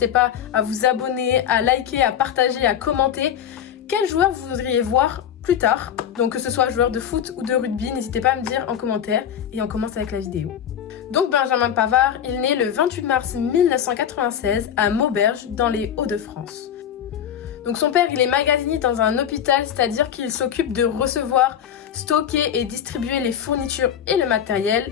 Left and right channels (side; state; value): right; quieter; 9.3 dB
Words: pas à vous abonner, à liker, à partager, à commenter. Quel joueur vous voudriez voir plus tard? Donc que ce soit joueur de foot ou de rugby, n'hésitez pas à me dire en commentaire. Et on commence avec la vidéo. Donc Benjamin Pavard, il est né le 28 mars 1996 à Maubeuge, dans les Hauts-de-France. Donc son père, il est magasinier dans un hôpital, c'est-à-dire qu'il s'occupe de recevoir, stocker et distribuer les fournitures et le